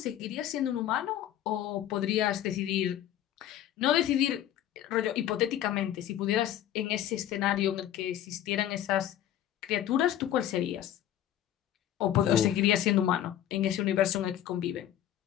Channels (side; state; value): right; quieter; 11.7 dB